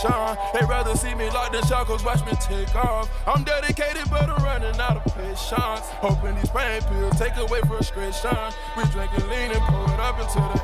They rather see me locked in shackles, watch me take off. I'm dedicated, but I'm running out of patience. Hoping these pain pills take away frustration. We drinking lean and pour it up until the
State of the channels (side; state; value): both; identical; correlation 1.00